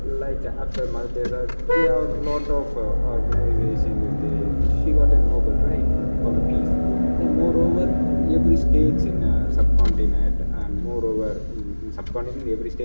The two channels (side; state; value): both; inverted; correlation -1.00